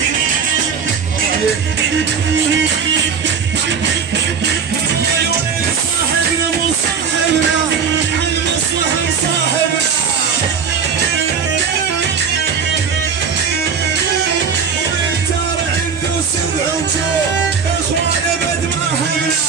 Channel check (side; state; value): left; quieter; 6.3 dB